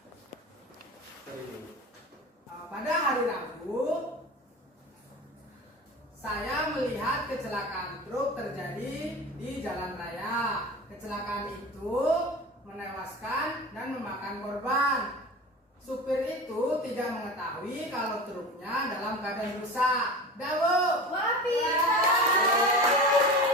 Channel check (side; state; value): both; normal; correlation 0.32